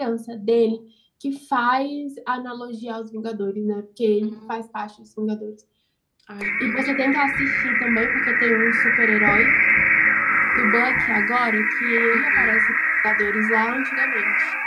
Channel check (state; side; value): identical; both; correlation 1.00